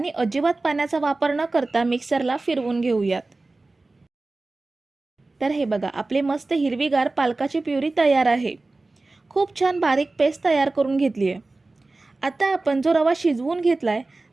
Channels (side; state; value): left; quieter; 3.2 dB